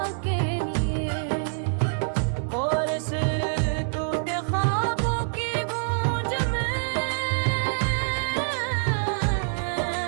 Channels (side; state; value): left; silent; digital silence